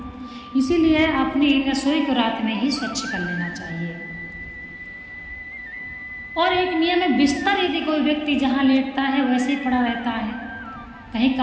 इसीलिए अपनी रसोई को रात में ही स्वच्छ कर लेना चाहिए। और एक नियम है, बिस्तर यदि कोई व्यक्ति जहाँ लेटता है वैसे ही पड़ा रहता है, कहीं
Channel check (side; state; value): both; identical; correlation 1.00